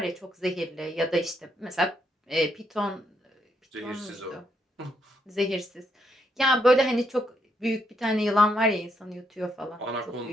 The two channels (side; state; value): both; normal; correlation 0.76